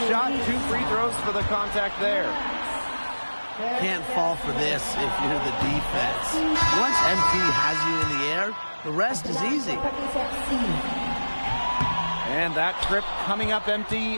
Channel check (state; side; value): inverted; both; correlation -1.00